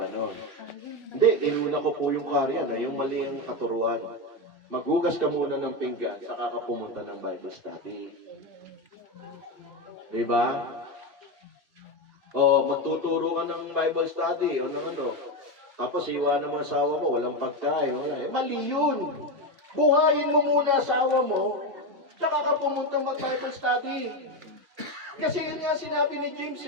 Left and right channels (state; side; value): late; left; 2.6 ms